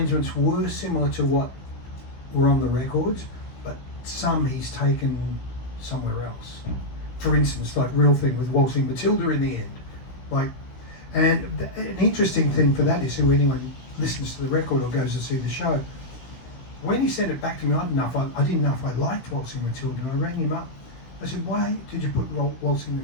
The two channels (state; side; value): late; right; 16 ms